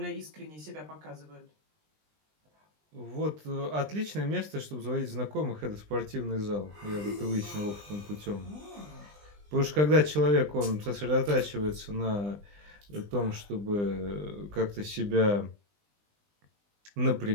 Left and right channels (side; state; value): left; late; 20 ms